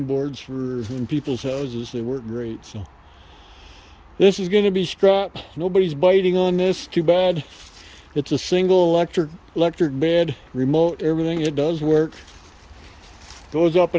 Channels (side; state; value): both; identical; correlation 1.00